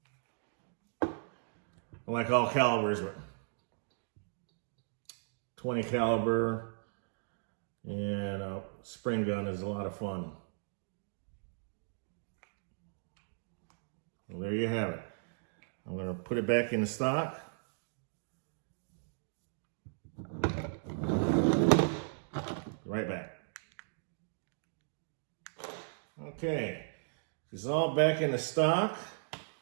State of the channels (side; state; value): left; silent; digital silence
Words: I like all calibers, but 20 caliber and a spring gun is a lot of fun. Well, there you have it. I'm going to put it back in the stock. Right back. Okay, it's all back in the stock.